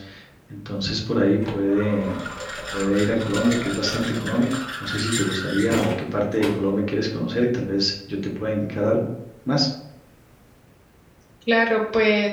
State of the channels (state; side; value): identical; both; correlation 1.00